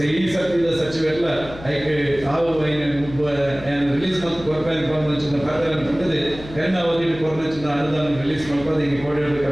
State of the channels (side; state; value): left; noise; hum, 15 dB below the sound